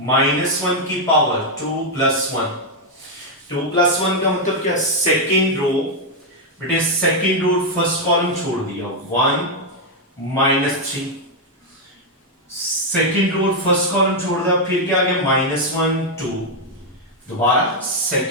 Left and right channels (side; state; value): both; normal; correlation 0.01